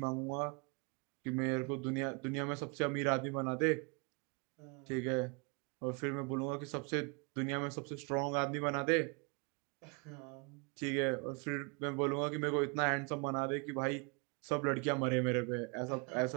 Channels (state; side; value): quieter; left; 33.0 dB